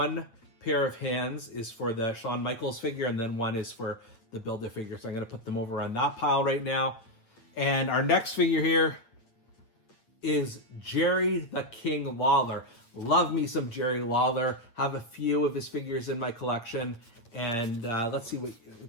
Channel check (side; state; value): right; late; 8.6 ms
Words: pair of hands is for the Shawn Michaels figure, and then one is for the Build-A-Figure. So I'm going to put them over on that pile right now. And our next figure here is Jerry the King Lawler. Love me some Jerry Lawler. Have a few of his figures in my collection. And let's see what...